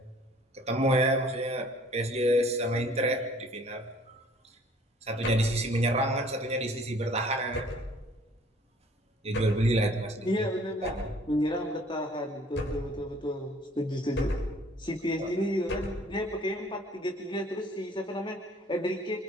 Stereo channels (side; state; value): both; normal; correlation 0.55